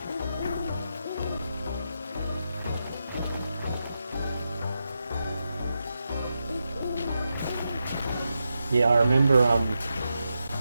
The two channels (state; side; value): inverted; both; correlation -0.87